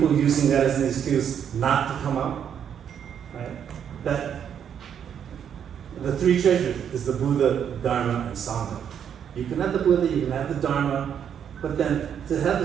using that as an excuse not to come out? Right? That the three treasures is the Buddha, Dharma, and Sangha. You can have the Buddha, you can have the Dharma, but then to have the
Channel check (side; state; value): left; quieter; 8.5 dB